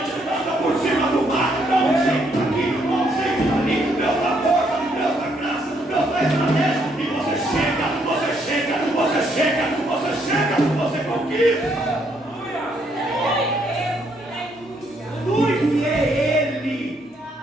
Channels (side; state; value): both; normal; correlation 0.72